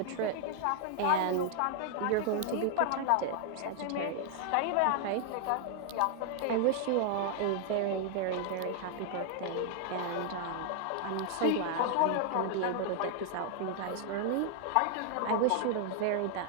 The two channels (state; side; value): different; both; correlation 0.00